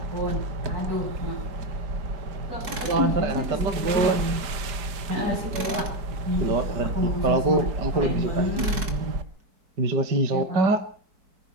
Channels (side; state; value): left; late; 4.7 ms